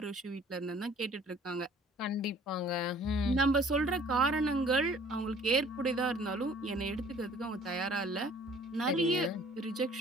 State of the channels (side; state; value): both; normal; correlation 0.53